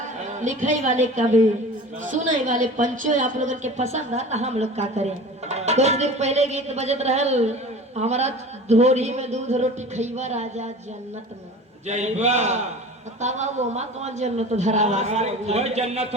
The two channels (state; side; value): normal; both; correlation 0.38